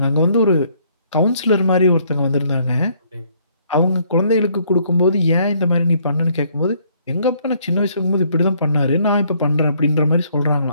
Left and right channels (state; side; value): inverted; both; correlation -0.66